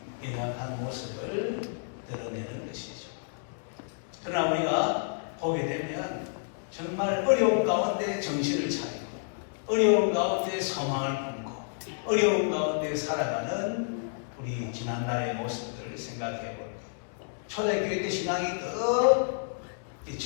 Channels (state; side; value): silent; right; digital silence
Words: 연약한 모습을 드러내는 것이죠. 그러나 우리가 보게 되면 정말 어려운 가운데 정신을 차리고 어려운 가운데 소망을 품고 어려운 가운데 살아가는 우리 지난날의 모습들을 생각해 볼게요. 초대교회 때 신앙이 더